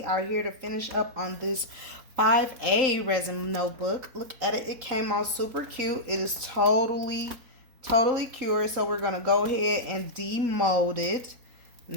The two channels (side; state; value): left; late; 3.8 ms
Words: are here to finish up on this 5A resin notebook. Look at it. It came out super cute. It is totally cured. So we're going to go ahead and demold it.